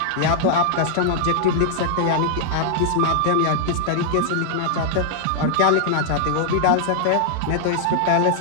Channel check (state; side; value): different; both; correlation -0.01